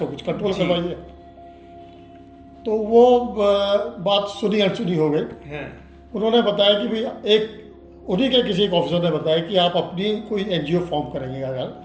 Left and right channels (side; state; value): both; identical; correlation 1.00